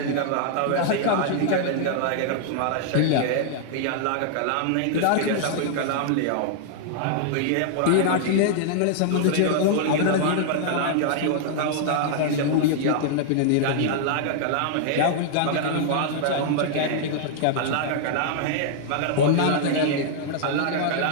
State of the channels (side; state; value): both; different; correlation -0.01